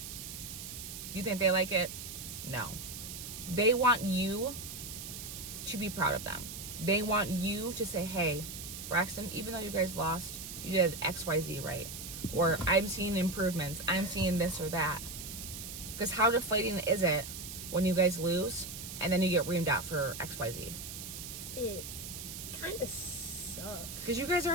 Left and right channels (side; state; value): right; noise; hiss, 9 dB below the sound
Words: Do you think they like it? No. They want you to be proud of them. They want you to say, hey, Braxton, even though you guys lost, you did XYZ right. Or I'm seeing improvements. I'm seeing this or that. Because how deflating is it when you guys lose and then you get reamed out for XYZ? It kind of sucks. Because you guys